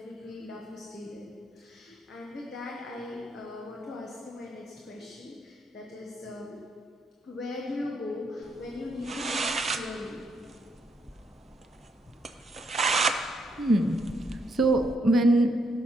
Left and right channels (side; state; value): both; normal; correlation 0.76